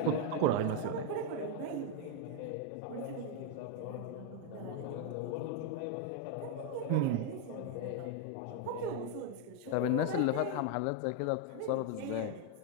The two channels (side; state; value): both; different; correlation 0.01